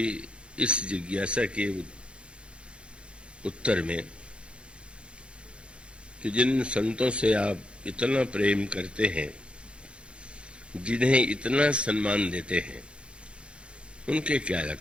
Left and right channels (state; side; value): late; left; 0.057 ms